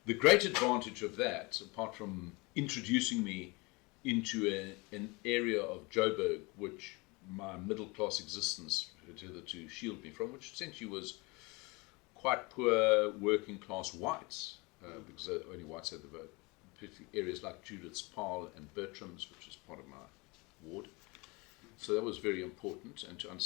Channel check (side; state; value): right; quieter; 26.3 dB